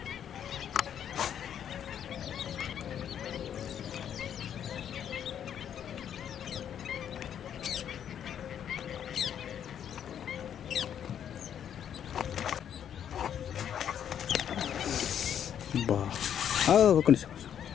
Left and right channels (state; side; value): quieter; right; 9.2 dB